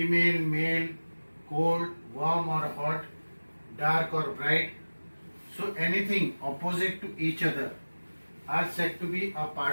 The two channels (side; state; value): both; inverted; correlation -1.00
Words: male, cold, warm or hot, dark or bright. So anything opposite to each other are said to be a